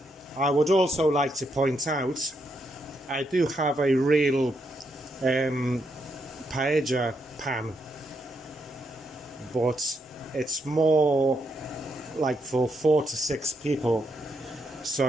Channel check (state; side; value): normal; both; correlation 0.79